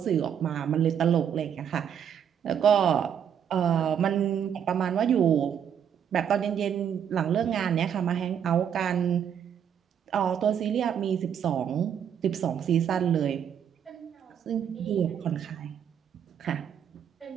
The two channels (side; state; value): left; quieter; 8.5 dB